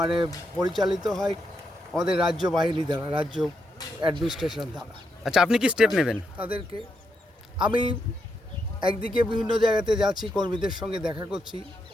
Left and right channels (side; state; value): both; normal; correlation 0.81